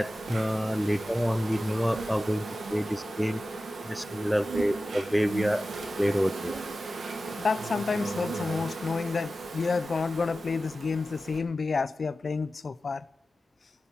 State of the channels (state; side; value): normal; both; correlation 0.94